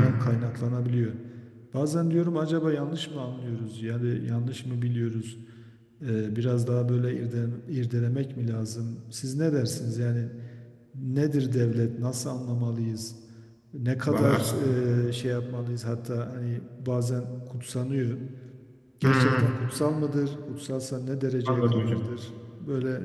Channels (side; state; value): both; identical; correlation 1.00